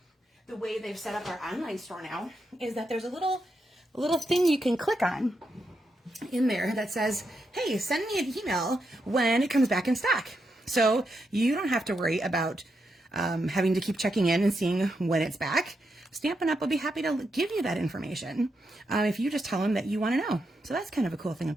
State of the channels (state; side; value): normal; both; correlation 0.83